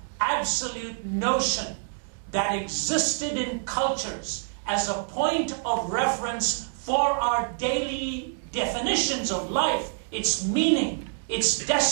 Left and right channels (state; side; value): silent; left; digital silence